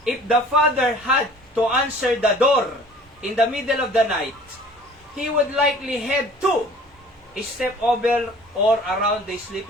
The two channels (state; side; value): normal; both; correlation 0.49